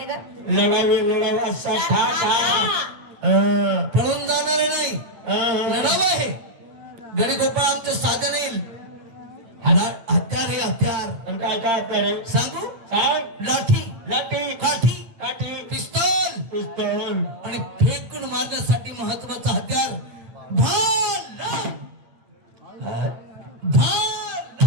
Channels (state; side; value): late; left; 8.8 ms